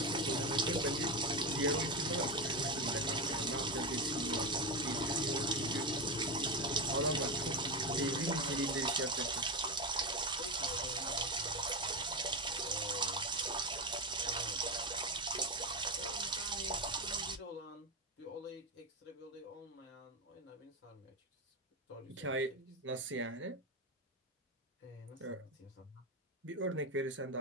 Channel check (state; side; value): normal; both; correlation 0.14